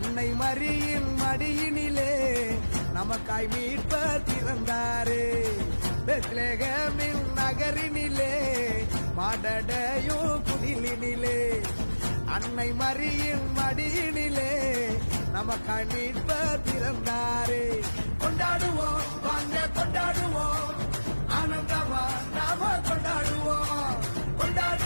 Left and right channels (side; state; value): both; inverted; correlation -1.00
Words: மரியின் மடியினிலே நமக்காய் மீட்பர் பிறந்தாரே. பெத்லகேமின் நகரினிலே மாடடையும் குடிலினிலே அன்னை மரியின் மடியினிலே நமக்காய் மீட்பர் பிறந்தாரே. கொண்டாடுவோம் வாங்க கொண்டாடுவோம், ஆனந்தமா நாம கொண்டாடுவோம்.